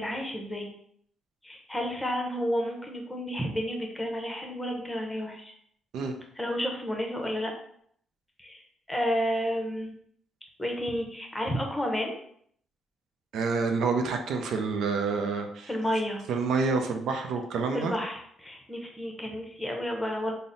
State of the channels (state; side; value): normal; both; correlation 0.76